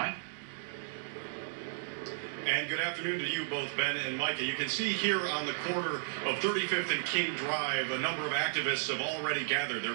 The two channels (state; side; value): silent; left; digital silence